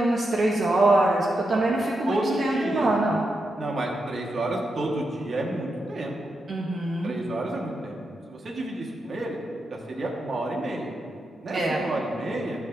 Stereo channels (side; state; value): both; normal; correlation 0.86